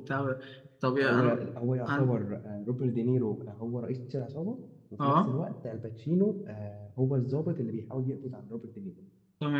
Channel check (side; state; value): both; identical; correlation 1.00